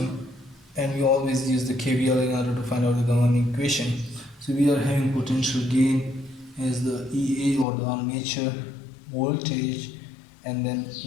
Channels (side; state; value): right; drops out; at 7.7 s